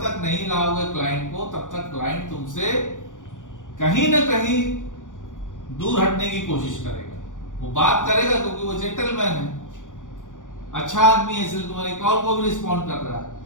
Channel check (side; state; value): right; late; 0.87 ms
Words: तक नहीं लाओगे क्लाइंट को, तब तक क्लाइंट तुमसे कहीं ना कहीं दूर हटने की कोशिश करेगा। वो बात करेगा क्योंकि वो जेंटलमैन है, अच्छा आदमी है, इसलिए तुम्हारी कॉल को भी रिस्पॉन्ड कर रहा